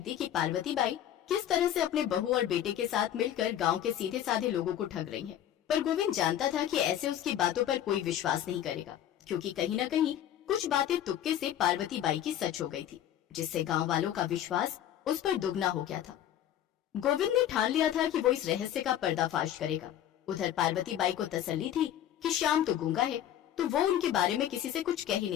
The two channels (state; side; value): quieter; right; 11.1 dB